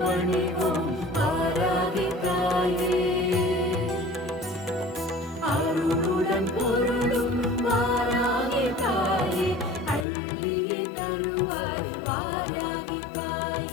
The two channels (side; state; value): right; drops out; at 10.1 s